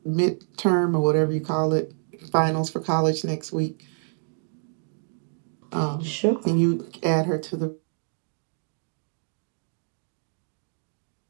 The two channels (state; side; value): silent; left; digital silence